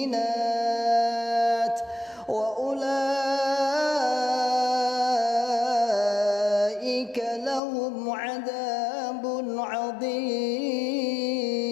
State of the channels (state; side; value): drops out; right; at 7.6 s